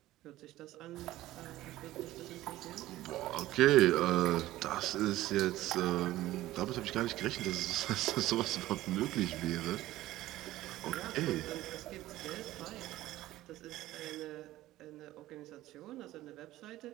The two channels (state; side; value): quieter; left; 15.7 dB